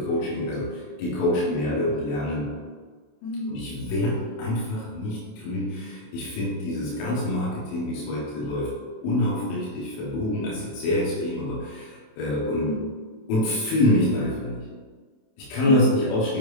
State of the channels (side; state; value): right; late; 27 ms